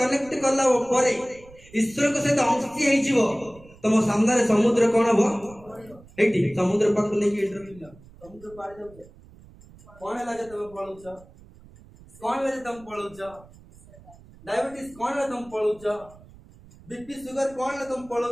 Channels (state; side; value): noise; right; rumble, 23 dB below the sound